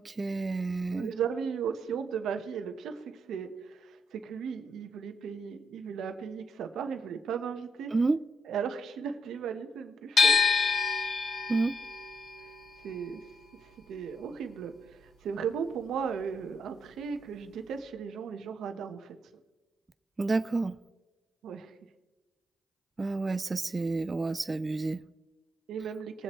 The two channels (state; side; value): normal; both; correlation 0.77